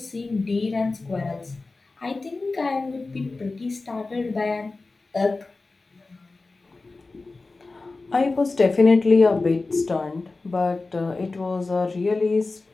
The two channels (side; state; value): right; quieter; 3.6 dB